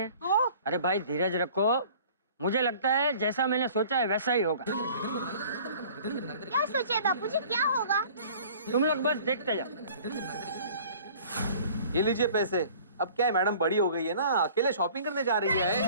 अरे भाई धीरज रखो, मुझे लगता है जैसा मैंने सोचा है वैसा ही होगा। क्या सोचे बापूजी, क्या होगा? तुम लोग बस देखते जाओ। ये लीजिए पैसे। अब क्या है, मैडम बड़ी हो गई है ना, अकेले शॉपिंग करने जा रही है।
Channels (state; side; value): inverted; both; correlation -0.49